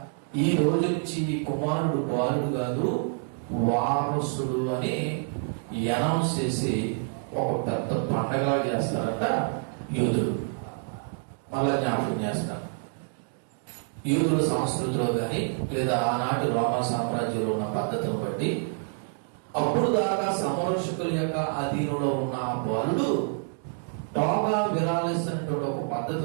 ఈ రోజు నుంచి ఈ కుమారుడు బాలుడు కాదు వారసుడు అని అనౌన్స్ చేసి ఒక పెద్ద పండగలా చేస్తారంట యూదులు. మళ్ళా జ్ఞాపకం చేస్తారు, యూదుల సంస్కృతిలో కానీ లేదా ఆనాటి రోమా సామ్రాజ్యంలో ఉన్న పద్ధతిని బట్టి అప్పుడు దాకా సంరక్షకుల యొక్క అధీనంలో ఉన్న ఆ బాలుడు టోగా విరాలిస్ అనేటువంటి ఒక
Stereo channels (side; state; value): left; silent; 60 dB below the other